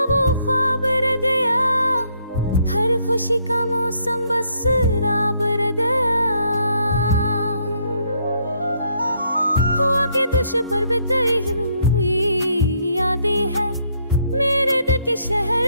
वो ख्वाब रह गया, हर खुशी का मौसम बस राब रह गया। हुआ के दुश पर बिताई हुई यादें है, मेरे दिल के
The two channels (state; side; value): inverted; both; correlation -0.71